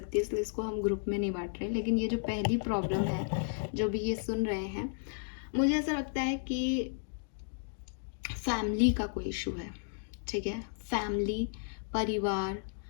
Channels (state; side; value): silent; right; digital silence